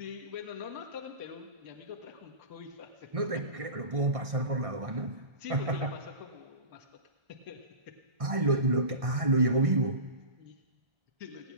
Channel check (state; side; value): late; left; 1.6 ms